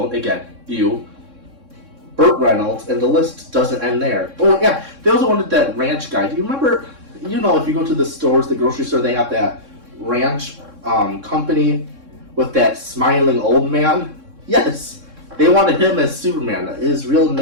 again, ew. Burt Reynolds, and the list doesn't end there. Oh yeah, they also wanted that ranch guy. Do you remember, if you go to the stores, the grocery store, they have that ranch company with that smiling old man? Yes, they wanted him as Superman. His real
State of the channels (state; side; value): late; left; 3.6 ms